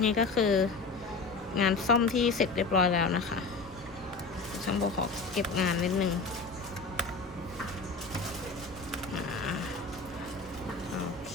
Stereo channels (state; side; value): quieter; right; 4.0 dB